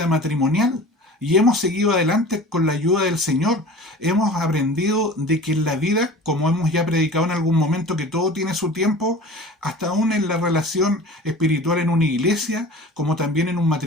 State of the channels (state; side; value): normal; both; correlation 0.40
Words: matrimonial. Y hemos seguido adelante con la ayuda del Señor. Hemos aprendido de que en la vida, como hemos ya predicado en algún momento, que todo tiene su tiempo, hasta aún en la relación espiritual en una iglesia, como también en un